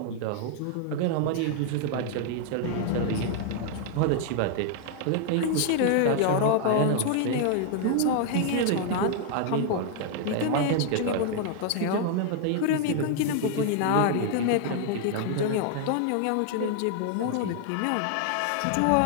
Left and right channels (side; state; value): both; different; correlation 0.00